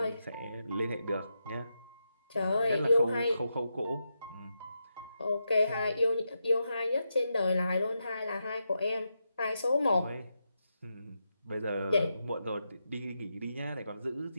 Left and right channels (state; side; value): inverted; both; correlation -0.86